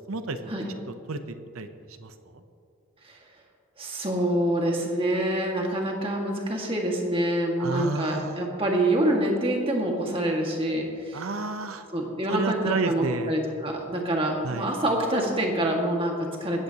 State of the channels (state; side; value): normal; both; correlation 0.49